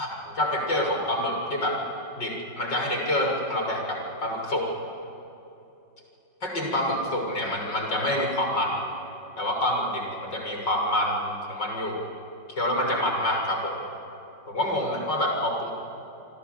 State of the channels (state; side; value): late; right; 5.4 ms